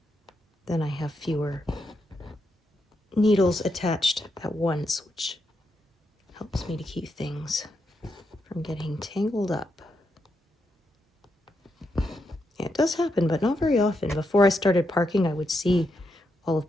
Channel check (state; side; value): normal; both; correlation 0.83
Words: Then I have fewer needles attached at once, which helps me to keep things from getting tangled up. Yeah, it does happen, but not very often. Before I started parking, I would see all of